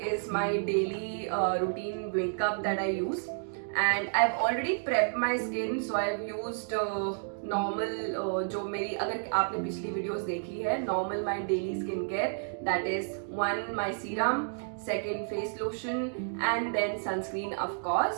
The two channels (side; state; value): left; silent; digital silence